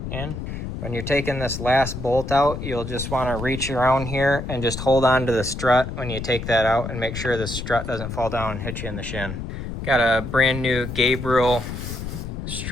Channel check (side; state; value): left; noise; rumble, 7 dB below the sound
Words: in. When you're taking this last bolt out, you'll just want to reach around here and just hold on to the strut when you take that out and make sure the strut doesn't fall down and hit you in the shin. Got a brand new Gabriel